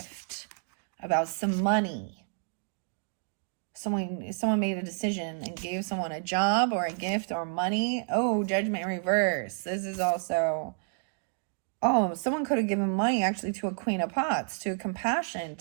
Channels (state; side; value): silent; left; 58 dB below the other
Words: about some money. Someone made a decision and gave someone a job or a gift or money. Oh, Judgment in reverse. This is also, someone could have given money actually to a Queen of Pots, to compassion,